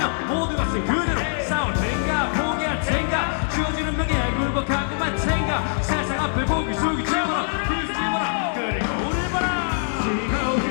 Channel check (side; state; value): right; silent; digital silence